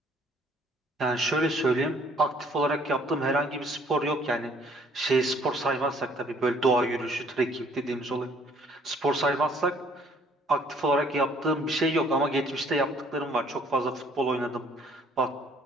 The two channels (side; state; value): both; normal; correlation 0.60